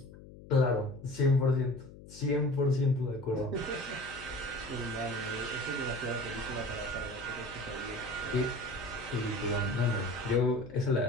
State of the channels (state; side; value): noise; left; hum, 17 dB below the sound